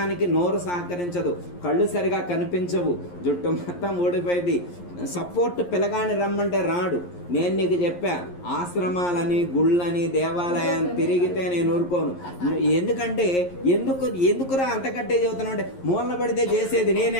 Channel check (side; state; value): right; late; 11 ms